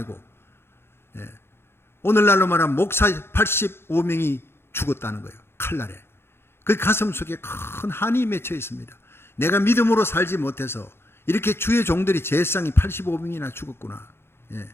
오늘날로 말하면 목사 85명이 죽었다는 거예요. 칼날에. 그 가슴 속에 큰 한이 맺혀 있습니다. 내가 믿음으로 살지 못해서 이렇게 주의 종들이 제사장이 85명이나 죽었구나.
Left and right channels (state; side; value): late; right; 0.11 ms